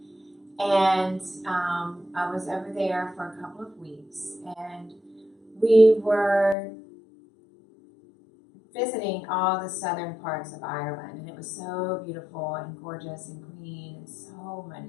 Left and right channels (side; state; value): right; drops out; at 6.6 s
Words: And I was over there for a couple of weeks, and we were visiting all the southern parts of Ireland, and it was so beautiful and gorgeous and green, and so